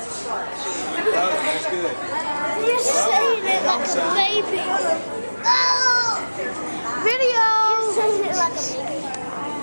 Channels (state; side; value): inverted; both; correlation -1.00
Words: Logan, that's good. You're saying it like a baby. Oh! Video! You're saying it like a baby.